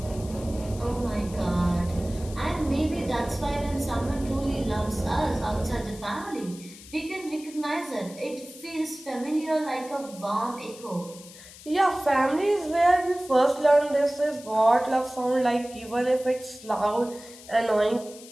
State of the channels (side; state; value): left; noise; hiss, 18 dB below the sound